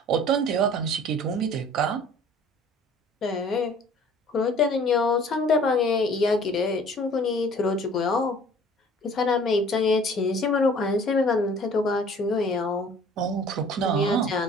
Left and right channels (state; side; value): normal; both; correlation 0.50